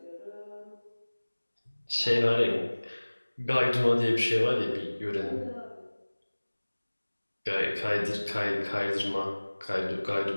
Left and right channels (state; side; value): inverted; both; correlation -1.00